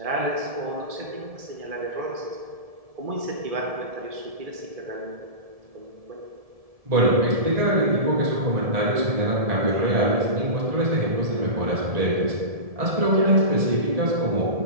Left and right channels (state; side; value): late; left; 1.7 ms